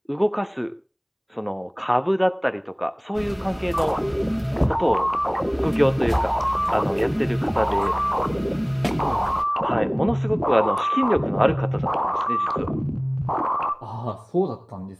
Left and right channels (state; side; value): identical; both; correlation 1.00